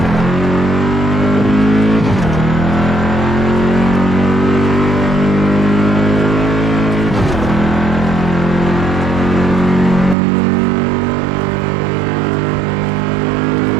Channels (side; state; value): left; drops out; at 10.2 s